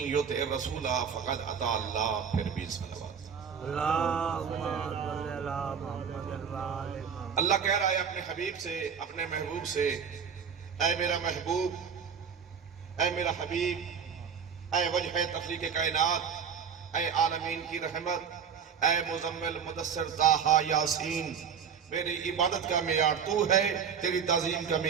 یطع الرسول فقد اطاع اللہ۔ پھر بھی صلوات۔ اللہم صلی علی محمد وآل محمد۔ اللہ کہہ رہا ہے اپنے حبیب سے، اپنے محبوب سے، اے میرا محبوب، اے میرا حبیب، اے وجہ تخلیق کائنات، اے عالمین کی رحمت، اے مزمل مدثر طٰہٰ یاسین، میری عبادت کا معیار تو ہے، تیری تعظیم کا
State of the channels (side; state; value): left; quieter; 7.0 dB